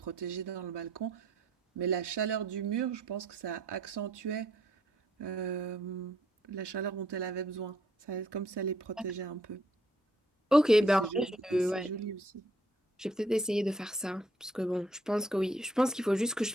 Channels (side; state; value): both; normal; correlation 0.67